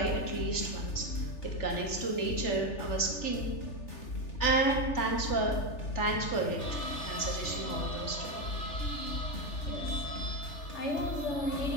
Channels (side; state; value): right; late; 3.4 ms